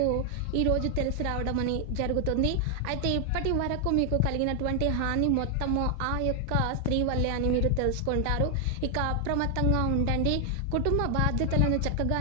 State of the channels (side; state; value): both; different; correlation 0.00